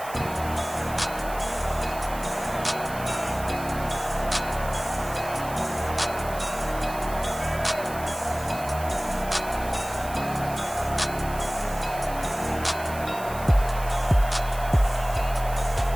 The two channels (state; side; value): noise; right; hiss, 15 dB below the sound